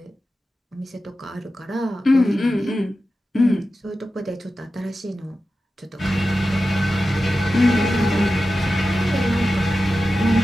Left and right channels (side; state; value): both; normal; correlation 0.93